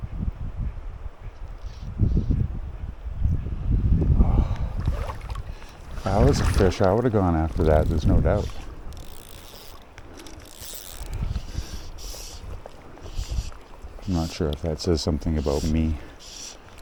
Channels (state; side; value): identical; both; correlation 1.00